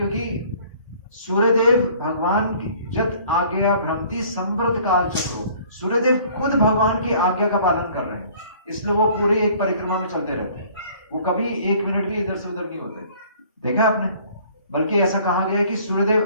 सूर्यदेव भगवान की जत आज्ञा भ्रमति संवृत काल चक्रो, सूर्यदेव खुद भगवान की आज्ञा का पालन कर रहे हैं, इसलिए वो पूरी एक परिक्रमा में चलते रहते हैं। वो कभी 1 मिनट भी इधर से उधर नहीं होते। देखा आपने? बल्कि ऐसा कहा गया है कि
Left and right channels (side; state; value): both; inverted; correlation -0.54